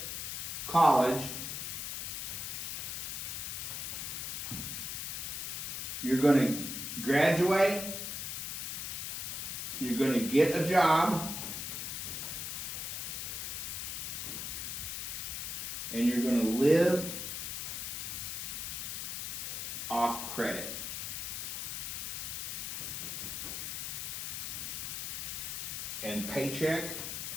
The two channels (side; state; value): left; noise; hiss, 4 dB below the sound